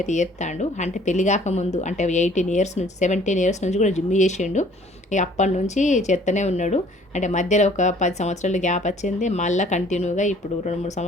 అయితే చేస్తాడు. అంటే పెళ్లి కాకముందు, అంటే 18 ఇయర్స్ నుంచి 17 ఇయర్స్ నుంచి కూడా జిమ్ చేసిండు. ఇక అప్పటి నుంచి చేస్తూనే ఉన్నాడు. అంటే మధ్యలో ఒక 10 సంవత్సరాలు గ్యాప్ వచ్చింది, మళ్ళీ కంటిన్యూగా ఇప్పుడు 2-3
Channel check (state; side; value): normal; both; correlation 0.56